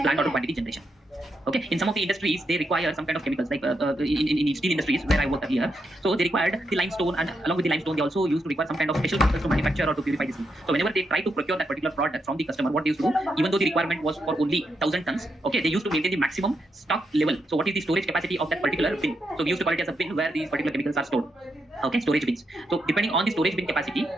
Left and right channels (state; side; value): normal; both; correlation 0.82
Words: order quantity generation. Okay, in some of the industries, they require some kind of chemicals, like in steel industries where I worked earlier. So they required the limestone, and along with the limestone, they also used to require some kind of special chemicals to manufacture or to purify this. So whenever they try to procure that particular product from the customer, what they used to do, even though the requirement was for only 1,000 tons, okay, they used to maintain the maximum stock level. So what is the storage capacity of that particular bin? So we used to call it as a bin where these particular chemicals are stored. Okay, storage bins. So depending on the storage bin capacity,